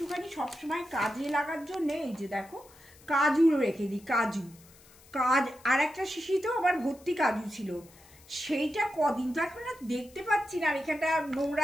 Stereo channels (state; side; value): noise; left; hiss, 25 dB below the sound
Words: সবসময় কাজে লাগার জন্য এই যে দেখো কাজু রেখে দিই, কাজু আর একটা শিশিতেও আবার ভর্তি কাজু ছিল, সেইটা কদিন তো এখন আর দেখতে পাচ্ছি না। আর এখানটা